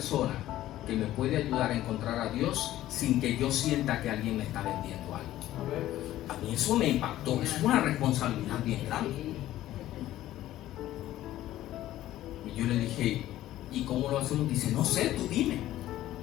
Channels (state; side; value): quieter; right; 14.1 dB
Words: que me puede ayudar a encontrar a Dios sin que yo sienta que alguien me está vendiendo algo. A mí eso me impactó, es una responsabilidad bien grande. Y yo le dije: ¿y cómo lo hacemos? Dice: no sé, tú dime.